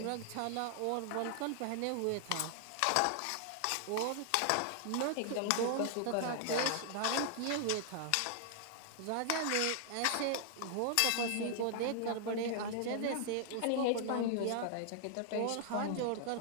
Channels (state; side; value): different; both; correlation 0.00